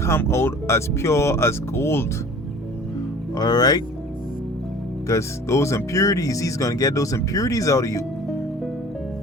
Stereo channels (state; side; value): normal; both; correlation 0.45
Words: out as pure as gold. All right, because those impurities, He's gonna get those impurities out of you.